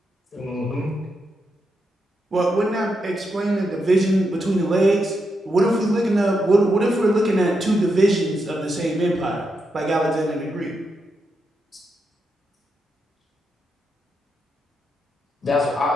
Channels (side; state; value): both; normal; correlation 0.84